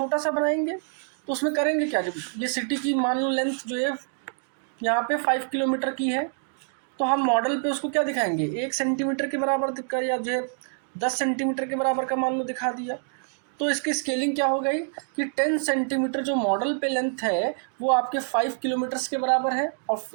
सा बनाएंगे। तो उसमें करेंगे क्या, जब ये सिटी की मान लो लेंथ जो है यहाँ पे 5 किलोमीटर की है, तो हम मॉडल पे उसको क्या दिखाएंगे, 1 सेंटीमीटर के बराबर दिखा, या जो है 10 सेंटीमीटर के बराबर का मान लो दिखा दिया। तो इसकी स्केलिंग क्या हो गई कि 10 सेंटीमीटर जो मॉडल पे लेंथ है वो आपके 5 किलोमीटर्स के बराबर है, और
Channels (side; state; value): left; silent; 60 dB below the other